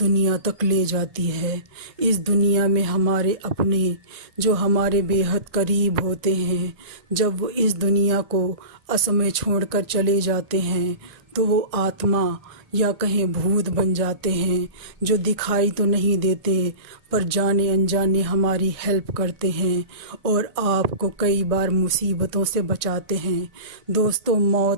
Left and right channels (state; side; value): late; left; 1.6 ms